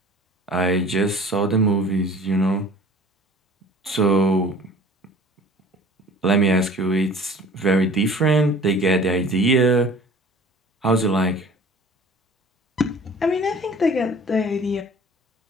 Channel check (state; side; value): normal; both; correlation 0.46